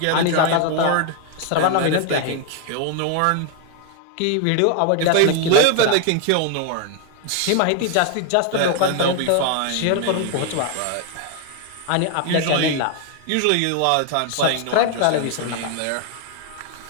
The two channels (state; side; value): different; both; correlation 0.00